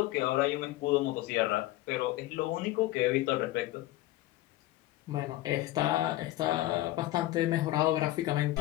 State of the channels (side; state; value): right; quieter; 16.4 dB